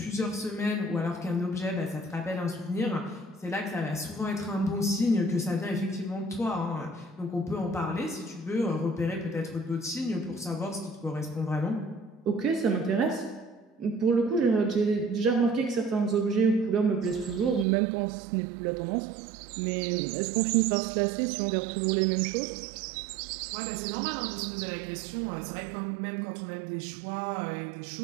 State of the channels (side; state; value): left; drops out; at 17.7 s